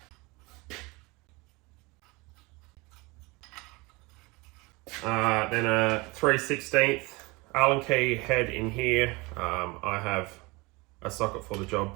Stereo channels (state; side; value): quieter; left; 24.7 dB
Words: 3/16 Allen key head in here. I have a socket for the